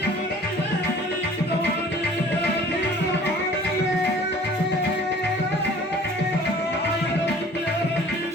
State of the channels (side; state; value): both; normal; correlation 0.50